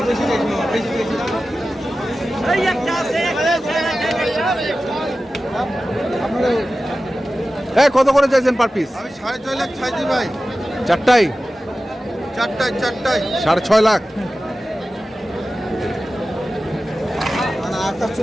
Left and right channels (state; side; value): normal; both; correlation 0.95